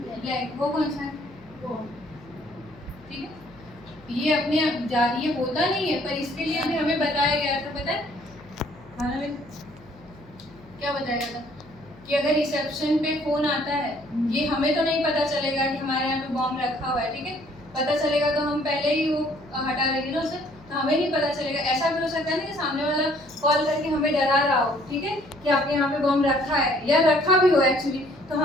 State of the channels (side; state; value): left; noise; hum, 23 dB below the sound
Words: वो कौन सा है, ठीक है। ये अपने ये होता नहीं है, पर इसके लिए भी हमें बताया गया था, पता है खाना में क्या बताया गया था कि अगर रिसेप्शन पे फोन आता है, ये हमें तो नहीं पता चलेगा कि हमारे यहाँ पे बॉम्ब रखा हुआ है, ठीक है। पता चलेगा तो हम पहले ही वो हटा देंगे ना उसे, तो हमें नहीं पता चलेगा। ऐसा भी हो सकता है ना कि सामने वाला कॉल करके हमें डरा रहा हो, ठीक है, कि आपके यहाँ पे बॉम्ब रखा है, या रखा भी हो एक्चुअली, तो